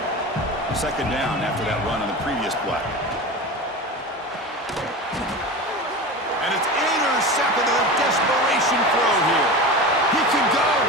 2nd down after that run on the previous play. And it's intercepted, a desperation throw here. He can go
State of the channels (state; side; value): normal; both; correlation 0.29